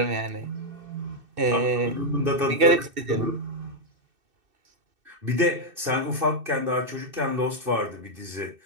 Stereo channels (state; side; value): late; left; 2.6 ms